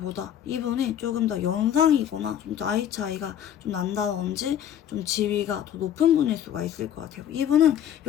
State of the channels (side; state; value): right; quieter; 10.1 dB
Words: 이분이 조금 더 연상이거나 좀 나이 차이가 좀 난다든지 좀 지위가 더 높은 분일 수가 있을 것 같아요. 이분은